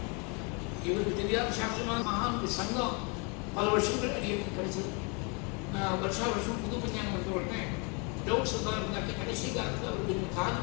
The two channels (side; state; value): right; quieter; 33.3 dB